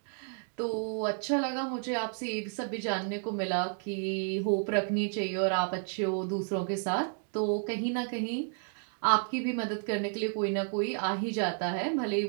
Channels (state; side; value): silent; left; 57 dB below the other